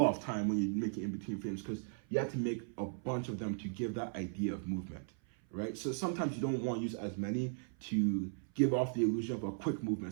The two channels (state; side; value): silent; left; 53 dB below the other